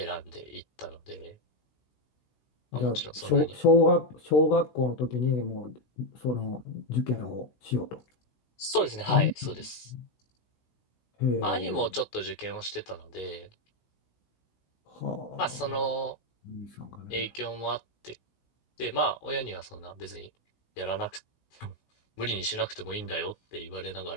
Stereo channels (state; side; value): late; right; 16 ms